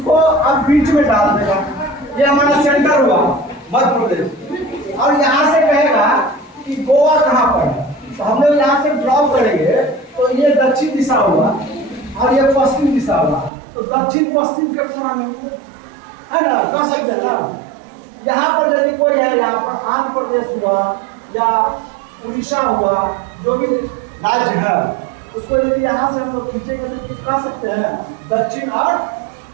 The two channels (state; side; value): drops out; left; at 13.5 s